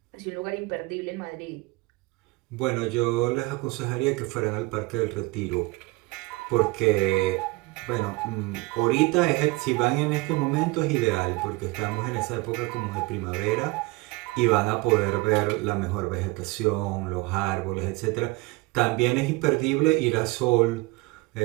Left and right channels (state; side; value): quieter; left; 23.3 dB